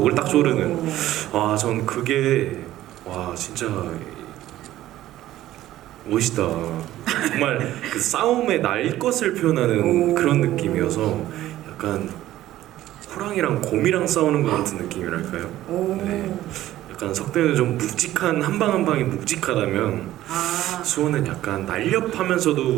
딱 조르는 전 그게 진짜 멋있다. 정말 그 싸움의 날 것을 표현하는 그런 느낌이어서 약간 호랑이랑 곰이랑 싸우는 것 같은 느낌이랄까요? 네. 약간 석대는 좀 묵직한 한 방 한 방이 묵직하다면 수호는 약간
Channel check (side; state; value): left; quieter; 14.3 dB